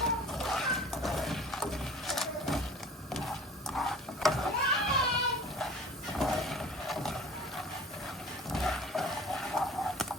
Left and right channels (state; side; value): normal; both; correlation 0.44